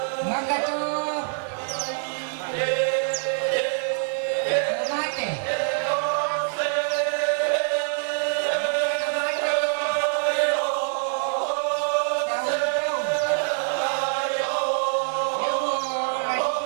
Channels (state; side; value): silent; left; digital silence